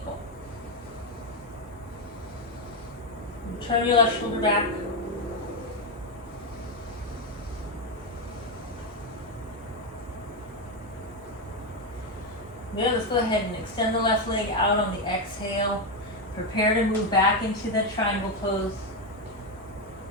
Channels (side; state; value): both; normal; correlation 0.07